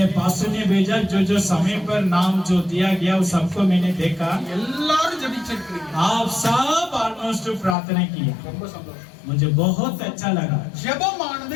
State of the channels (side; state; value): right; drops out; at 7.8 s